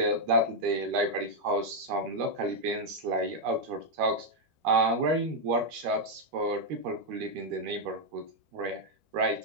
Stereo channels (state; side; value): late; left; 13 ms